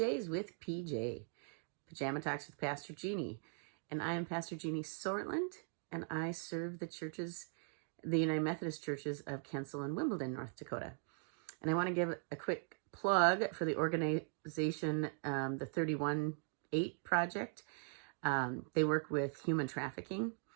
with PJ, Pajama Talks with Pastor Jeannie. And I am Pastor Jeannie Sortland, and I serve the United Methodist Churches of Kensal and Wimbledon, North Dakota. And I want to give a quick plug for the organization, the 31-8 Project. They work with human trafficking,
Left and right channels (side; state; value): left; silent; 51 dB below the other